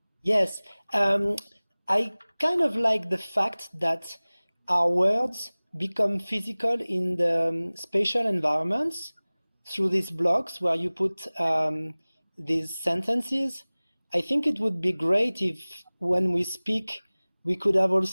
Yes. I kind of like the fact that our words become physical in the spatial environments through these blocks where you put these sentences. I think it would be great if when we speak, we could have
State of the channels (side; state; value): both; inverted; correlation -0.99